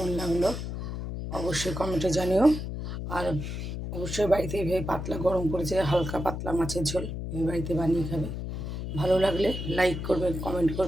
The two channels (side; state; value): left; noise; hum, 5 dB below the sound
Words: লাগলো অবশ্যই কমেন্টে জানিও। আর অবশ্যই বাড়িতে এইভাবে পাতলা গরম করেছে হালকা পাতলা মাছের ঝোল এই বাড়িতে বানিয়ে খাবে। ভালো লাগলে লাইক করবে, কমেন্ট